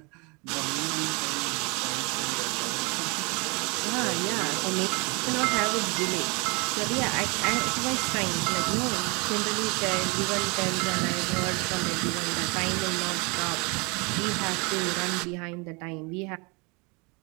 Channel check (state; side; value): quieter; left; 29.8 dB